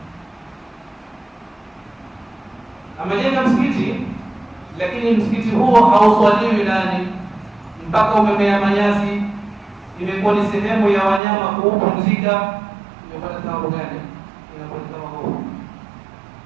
Amejenga msikiti lakini msikiti huo hauswaliwi ndani, mpaka umemea manyasi, imekuwa ni sehemu ya wanyama kuupumzika, imepata thawabu gani? Inakuwa kama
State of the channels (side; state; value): left; drops out; at 11.2 s